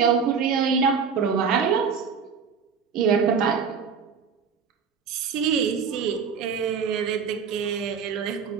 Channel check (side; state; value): left; quieter; 6.2 dB